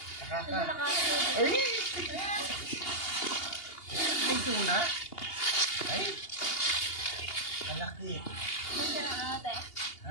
Nakaka. Ay! Ay, doon ha. Ay! Kalaki. Ganda ng ate.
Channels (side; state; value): right; late; 2.8 ms